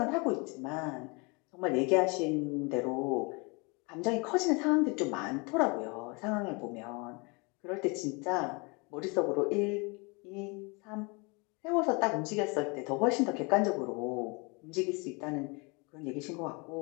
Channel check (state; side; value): quieter; right; 29.8 dB